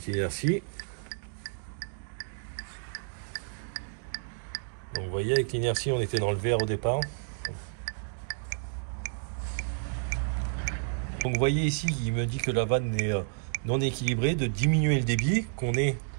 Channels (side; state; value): left; silent; digital silence